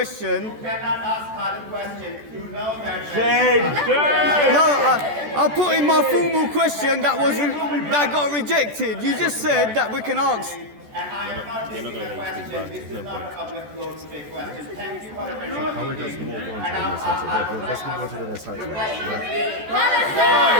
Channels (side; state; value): left; late; 14 ms